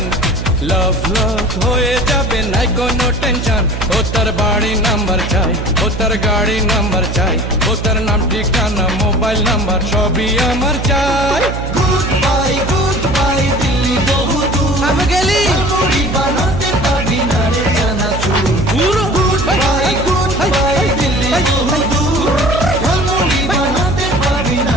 লাভ লাভ হয়ে যাবে নাই কোনো টেনশন। ও তার বাড়ি নাম্বার চাই, ও তার গাড়ি নাম্বার চাই, ও তার নাম ঠিকানা মোবাইল নাম্বার সবই আমার চাই। গুড বাই দিল্লি বহু দূর, আমি গেলি মুড়ি বানাতে পারবি না রে চানাচুর। পুরো গুড বাই দিল্লি বহু দূর, মুড়ি বানাতে পারবি না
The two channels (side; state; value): right; noise; hum, 5 dB below the sound